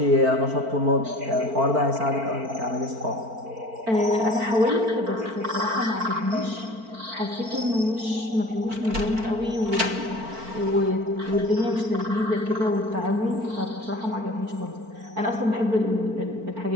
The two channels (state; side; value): late; left; 4.5 ms